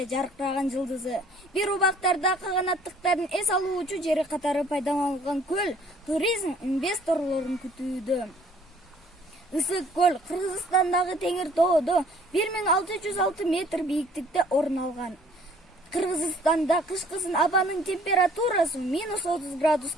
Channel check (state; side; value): normal; both; correlation 0.57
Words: жаркыраган жылдызы. Бир убактарда каганаттыктардын эс алуучу жери катары пайдаланылган көл туризм инвесторлорун күтүүдө. Ысык көл Кыргызстандагы Теңир тоодо 1606 метр бийиктикте орун алган. Кыргызстанда кышкысын абанын температурасы -30